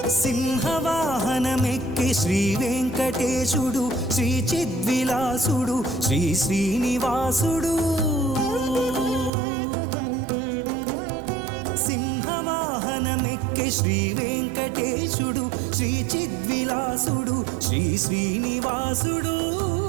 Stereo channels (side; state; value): left; drops out; at 9.3 s